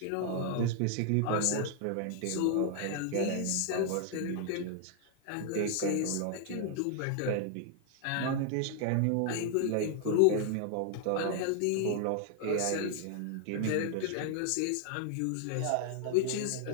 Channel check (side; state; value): both; different; correlation 0.00